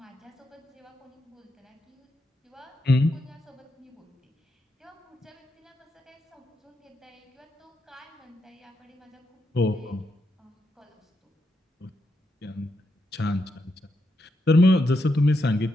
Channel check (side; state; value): both; normal; correlation 0.83